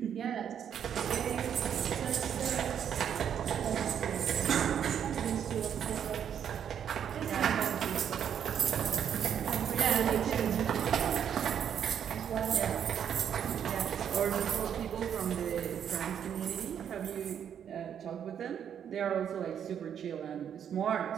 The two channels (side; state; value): left; quieter; 8.7 dB